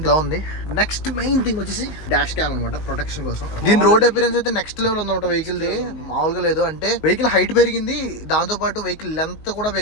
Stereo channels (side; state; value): right; late; 19 ms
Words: ఉంది. నెక్స్ట్ మెయిన్ థింగ్ వచ్చేసి డాష్ క్యామ్ అనమాట, ప్రొటెక్షన్ కోసం. దీని రోడ్ అపిరెన్స్ అయితే నెక్స్ట్ లెవెల్ ఉందన్నమాట వెహికల్ ది, మామూలుగా లేదు. అంటే వెహికల్ హైట్ పెరిగింది, దాంతో పాటు వెహికల్ లెంత్ కూడా